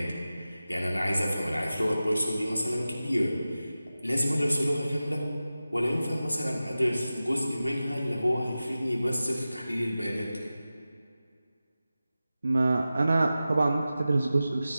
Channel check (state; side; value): inverted; both; correlation -0.95